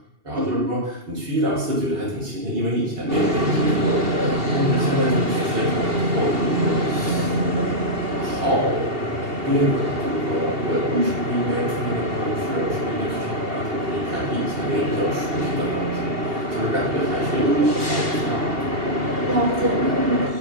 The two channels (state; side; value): late; left; 2.8 ms